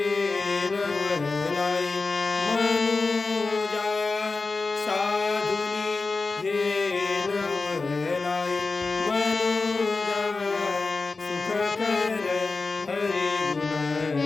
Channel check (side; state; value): right; quieter; 3.9 dB